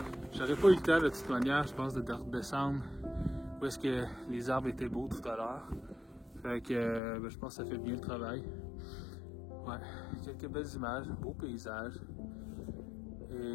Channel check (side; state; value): right; drops out; at 7.0 s